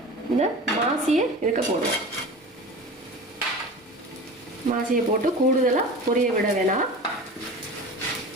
இந்த மாசியை இதுக்கு போடுவோம். மாசியை போட்டு கூடுதலாக பொரிய விட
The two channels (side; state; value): both; normal; correlation 0.34